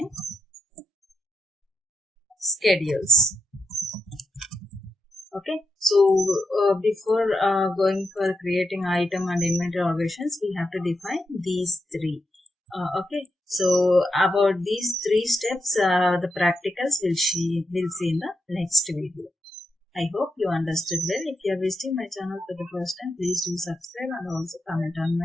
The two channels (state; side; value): normal; both; correlation 0.84